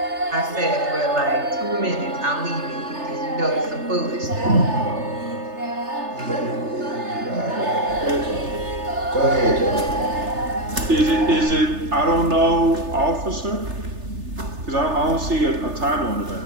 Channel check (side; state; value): left; late; 3.3 ms